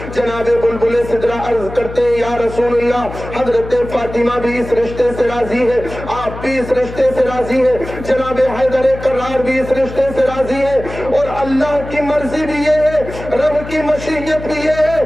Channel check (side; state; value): left; noise; hum, 11 dB below the sound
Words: جناب بلبل سدرا عرض کرتے ہیں یا رسول اللہ حضرت فاطمہ بھی اس رشتے سے راضی ہے، آپ بھی اس رشتے سے راضی ہے، جناب حیدر کرار بھی اس رشتے سے راضی ہے، اور اللہ کی مرضی بھی یہ ہے، رب کی مشیت بھی یہ